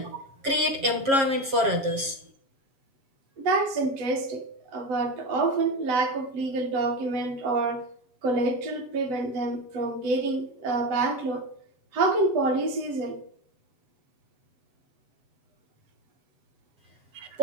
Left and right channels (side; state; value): left; late; 7.4 ms